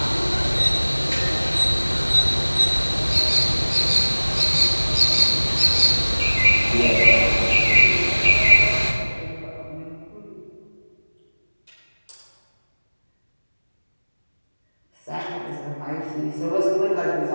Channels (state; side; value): inverted; both; correlation -1.00